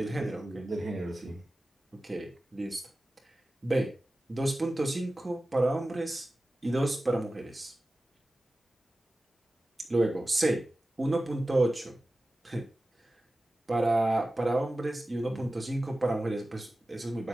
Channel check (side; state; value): both; normal; correlation 0.95